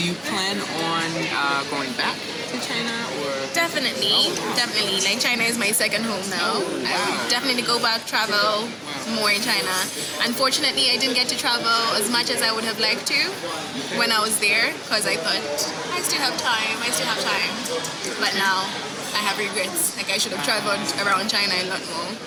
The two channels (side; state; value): both; identical; correlation 1.00